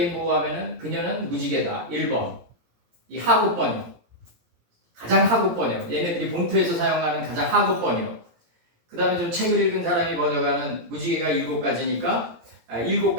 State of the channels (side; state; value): left; late; 17 ms